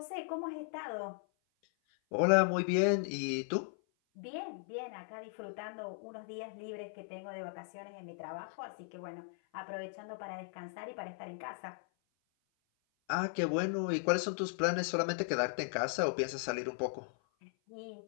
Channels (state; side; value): silent; right; 53 dB below the other